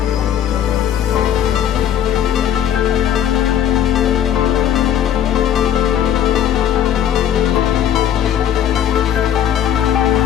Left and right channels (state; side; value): quieter; right; 10.0 dB